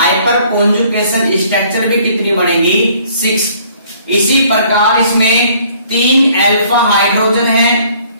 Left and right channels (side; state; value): both; inverted; correlation -0.59